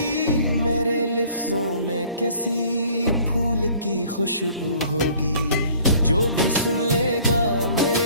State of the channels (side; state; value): both; inverted; correlation -0.54